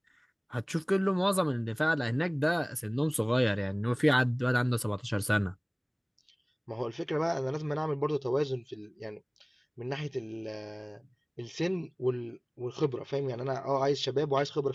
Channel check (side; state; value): both; identical; correlation 1.00